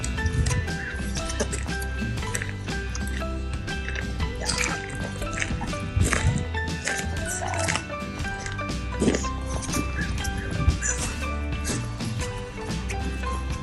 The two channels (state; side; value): identical; both; correlation 1.00